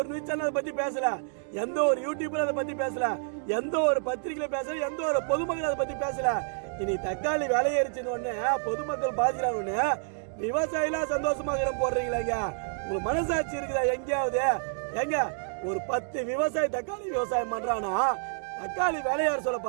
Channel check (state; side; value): silent; left; digital silence